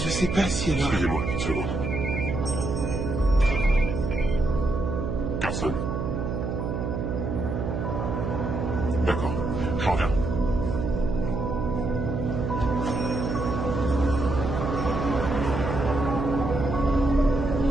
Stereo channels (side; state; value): right; noise; hum, 2 dB below the sound